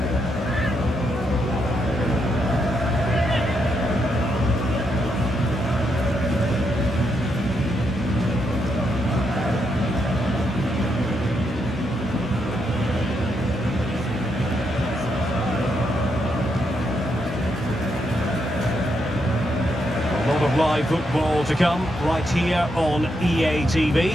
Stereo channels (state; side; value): normal; both; correlation 0.80